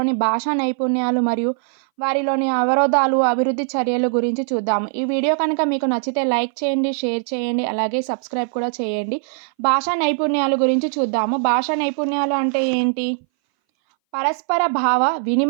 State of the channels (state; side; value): silent; left; 61 dB below the other